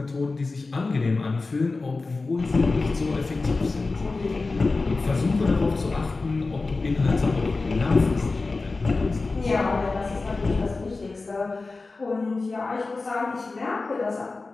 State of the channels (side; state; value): right; quieter; 3.7 dB